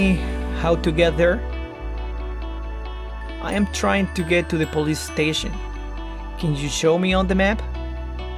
how to get there? I am trying to get to the police station. Can you show me on the map?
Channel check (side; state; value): both; identical; correlation 1.00